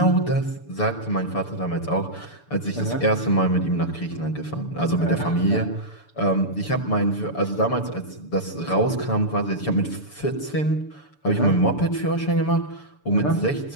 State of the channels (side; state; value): right; late; 6.9 ms